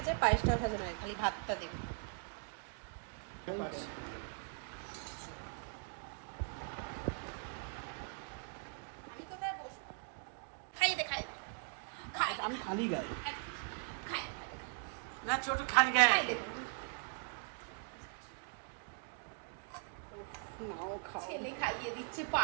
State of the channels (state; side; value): silent; left; 51 dB below the other